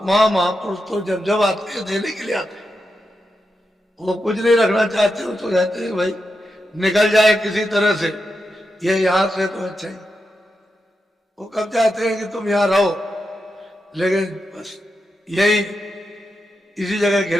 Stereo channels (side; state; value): both; normal; correlation 0.87